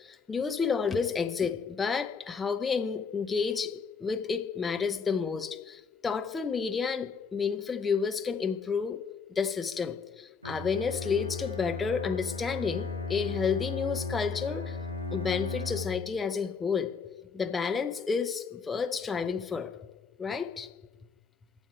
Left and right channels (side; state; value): right; quieter; 5.4 dB